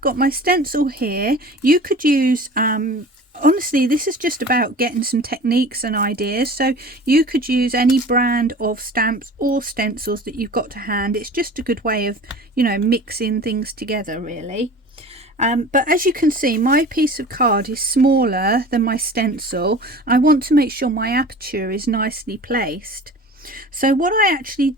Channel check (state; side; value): normal; both; correlation 0.40